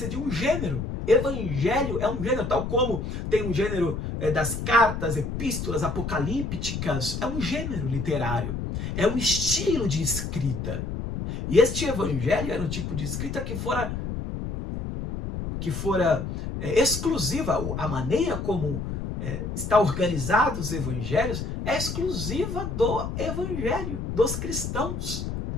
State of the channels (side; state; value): left; noise; rumble, 5 dB below the sound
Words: de um gênero. Evangelho é um gênero, tal como tem um gênero das cartas, epístolas apocalípticas, é um gênero literário, é um estilo de escrita. E este evangelho era um tipo de escrita que fora exclusiva, a maneira como está organizados os evangelhos é exclusiva do evangelho, dos cristãos,